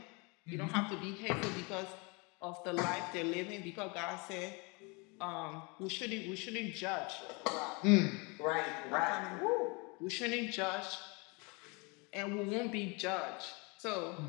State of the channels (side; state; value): right; quieter; 29.6 dB